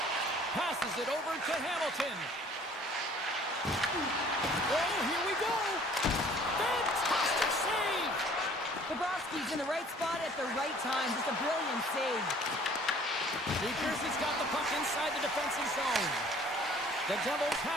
Passes it over to Hamilton. Oh, here we go! Fantastic save! Bobrovsky's in the right spot at the right time. Just a brilliant save. New Jersey's got the puck inside the defensive zone. The Devils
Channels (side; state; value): both; normal; correlation 0.54